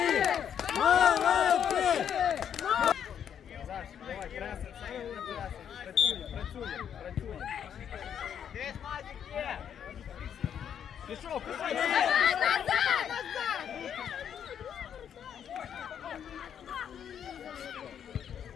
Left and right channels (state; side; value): quieter; right; 8.7 dB